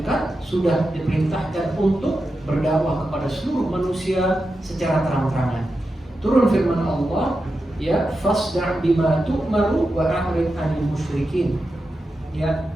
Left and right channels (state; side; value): normal; both; correlation 0.90